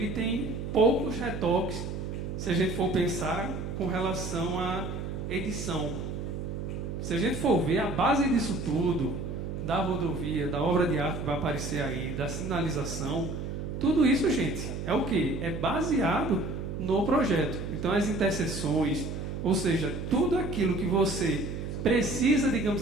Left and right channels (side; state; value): right; noise; hum, 5 dB below the sound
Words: tem poucos retoques, se a gente for pensar com relação à edição. Se a gente for ver a base disso tudo, da rodovia, da obra de arte que vai aparecer aí, da sinalização, tudo isso, gente, é o quê? É baseado no projeto. Então, as interseções, ou seja, tudo aquilo que você precisa,